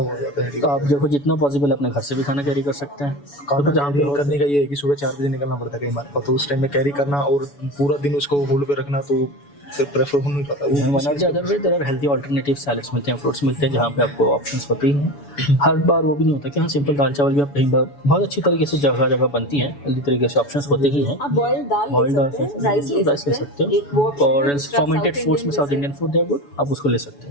जाता है हेडेक। तो आप देखो, जितना पॉसिबल अपने घर से भी खाना कैरी कर सकते हैं। खाना कैरी करने का ये है कि सुबह 4 बजे निकलना पड़ता है कई बार, तो उस टाइम में कैरी करना और पूरा दिन उसको होल्ड पे रखना, तो फिर प्रेफर हो नहीं पाता। One of the other way there are healthy alternative salads मिलते हैं, फ्रूट्स मिलते हैं, जहाँ पे आपको ऑप्शंस होती हैं। हर बार वो भी नहीं होता कि हाँ सिंपल दाल चावल भी आप कहीं बार बहुत अच्छी तरीके से जगह जगह बनती हैं, हेल्दी तरीके से ऑप्शंस होते ही हैं। आप बॉइल्ड दाल बॉइल्ड ले सकते हैं, राइस ले सकते हैं, एक वो और फर्मेंटेड फूड्स में south Indian food they are good, आप उसको ले सकते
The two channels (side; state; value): right; late; 7.0 ms